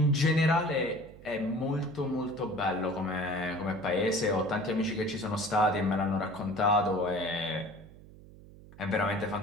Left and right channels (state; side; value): noise; right; hum, 20 dB below the sound